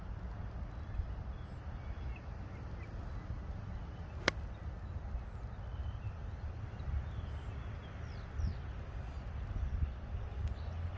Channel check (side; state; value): both; identical; correlation 1.00